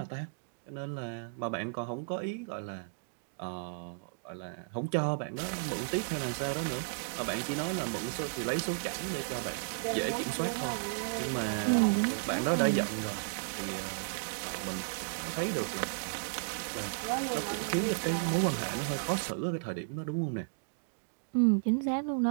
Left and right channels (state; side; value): quieter; left; 38.4 dB